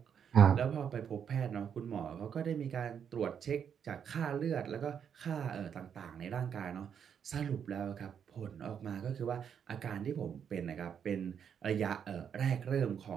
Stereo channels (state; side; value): quieter; left; 7.9 dB